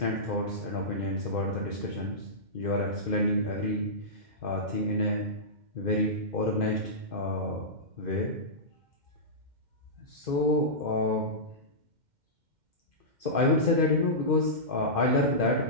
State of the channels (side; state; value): left; late; 2.1 ms